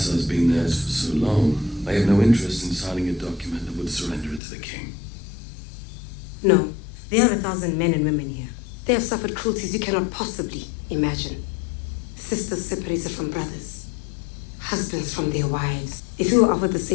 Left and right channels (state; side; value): drops out; right; at 4.4 s